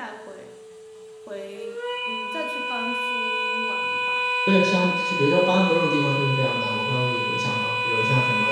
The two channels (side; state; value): both; identical; correlation 1.00